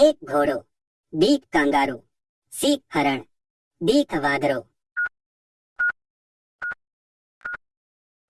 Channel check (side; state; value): both; identical; correlation 1.00